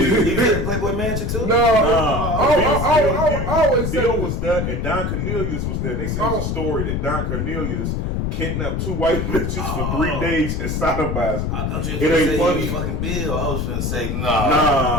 He was in Playboy Mansion too. I always said Bill was there, and Don Cornelius was there. And they said it was a story that Don Cornelius kidnapped 2 white bitches for 3 days and sodomized them. I thought you were going to say he was fucking Bill. I was going to say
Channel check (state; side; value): noise; left; rumble, 1 dB below the sound